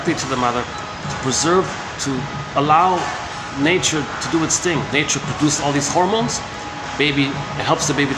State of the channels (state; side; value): identical; both; correlation 1.00